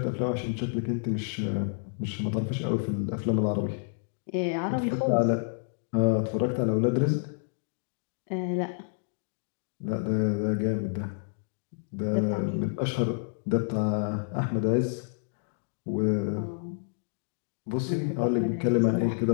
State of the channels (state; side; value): silent; right; digital silence